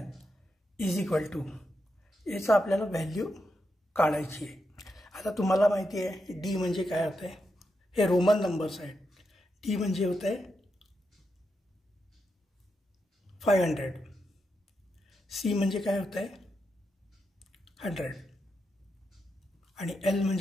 is equal to, याचा आपल्याला व्हॅल्यू काढायची आहे। आता तुम्हाला माहिती आहे डी म्हणजे काय होते, हे रोमन नंबर्स आहेत। डी म्हणजे होते 500, सी म्हणजे काय होते 100 आणि एल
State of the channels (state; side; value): normal; both; correlation 0.85